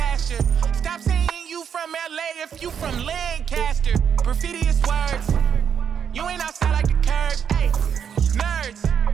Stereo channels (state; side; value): quieter; left; 7.8 dB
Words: you. Stop saying you from LA if you from Lancaster. Graffiti is words. You ain't outside.